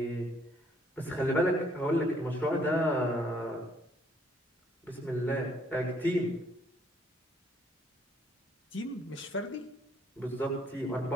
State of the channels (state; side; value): normal; both; correlation 0.66